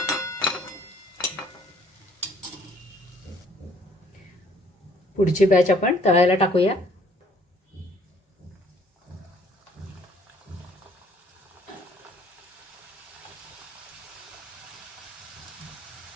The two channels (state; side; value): normal; both; correlation 0.60